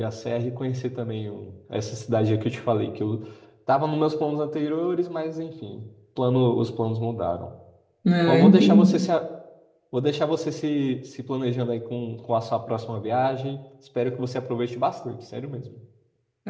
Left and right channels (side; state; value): both; identical; correlation 1.00